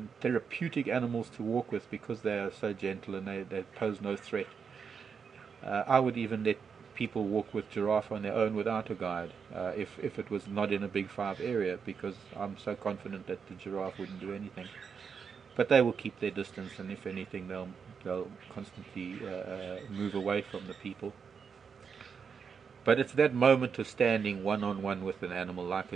therapeutic animals to walk with, because they are so gentle and they pose no threat. I would even let people walk with giraffe on their own without a guide, if it was not in a Big 5 area, because I'm so confident that the giraffe wouldn't do anything. But they will keep their distance, and if anything, they'll constantly move away from the people. But it's that moment of standing one-on-one with an animal like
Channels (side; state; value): left; quieter; 6.3 dB